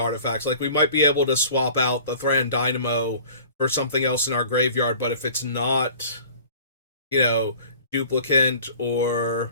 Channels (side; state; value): both; inverted; correlation -0.46